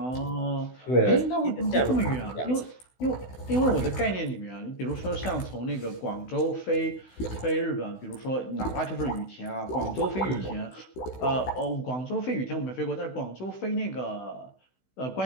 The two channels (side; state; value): right; late; 16 ms